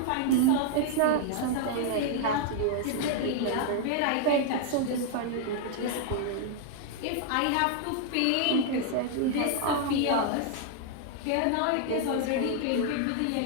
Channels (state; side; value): different; both; correlation 0.00